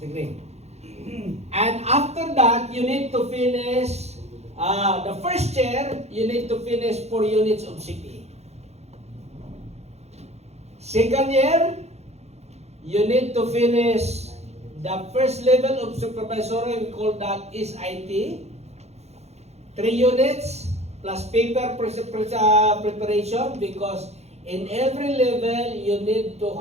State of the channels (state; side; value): late; left; 0.31 ms